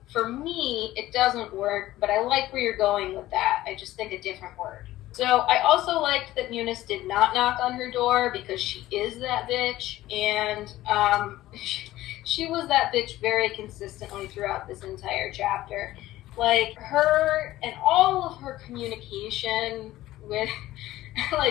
for me, it doesn't work, but I like where you're going with that. I just think a different word. So, I also liked that Munis did not knock on her door, because she is that bitch. And, she was that bitch very consistently throughout this entire chapter. Like her and all of her communication with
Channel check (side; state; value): right; quieter; 15.7 dB